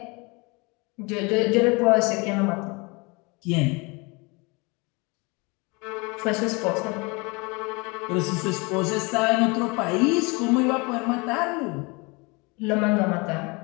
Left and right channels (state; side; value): quieter; right; 27.8 dB